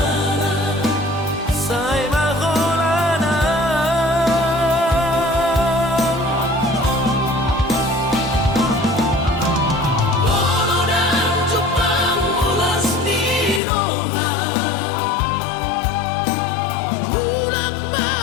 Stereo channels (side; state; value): right; drops out; at 13.6 s